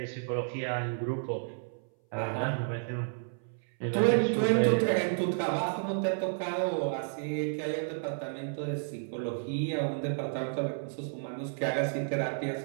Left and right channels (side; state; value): left; silent; 57 dB below the other